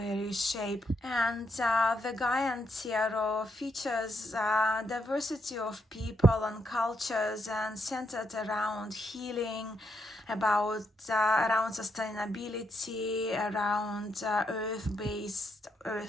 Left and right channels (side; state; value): both; normal; correlation 0.78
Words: shape. And the Guy and Tierra features diversity of people and cultures and centered around healing, about around sustainability, around earth-based,